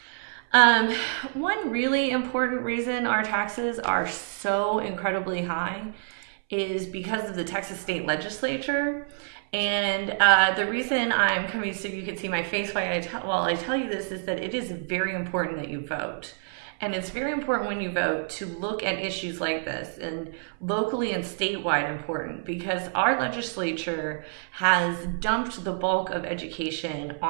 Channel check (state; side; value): silent; left; 60 dB below the other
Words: One really important reason our taxes are so incredibly high is because of the Texas State Legislature. And the reason I'm coming so you can see my face while I tell you this is that it is very important that you vote. And it's very important when you vote to look at issues like this, and locally and statewide important, because our legislature has dumped the bulk of education